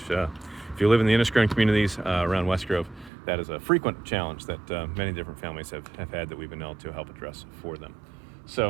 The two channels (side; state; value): left; drops out; at 3.1 s